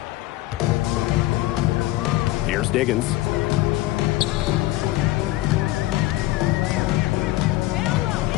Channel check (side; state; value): right; quieter; 17.3 dB